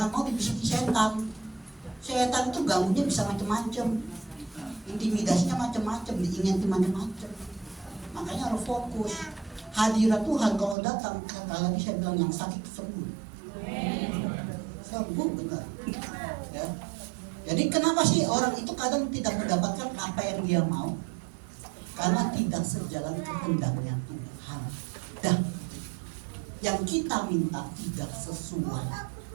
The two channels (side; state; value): left; drops out; at 10.8 s